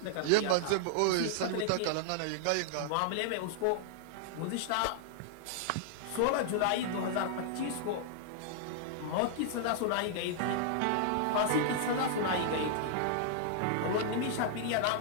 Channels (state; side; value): different; both; correlation -0.01